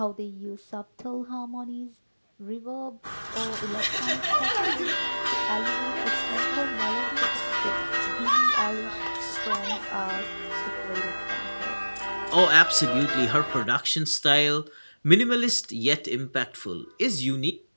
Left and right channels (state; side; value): inverted; both; correlation -1.00